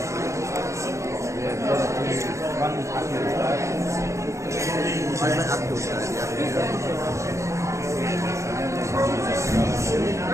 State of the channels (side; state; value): left; late; 0.14 ms